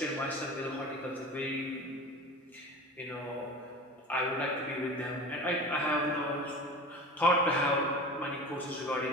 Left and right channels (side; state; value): both; normal; correlation 0.34